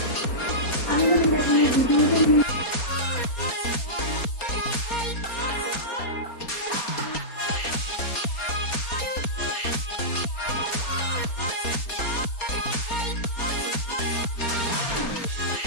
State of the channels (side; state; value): right; late; 4.3 ms